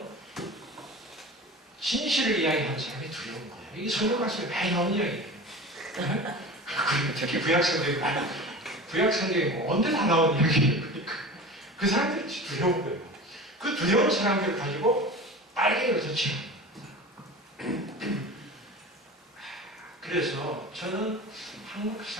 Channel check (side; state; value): both; normal; correlation 0.34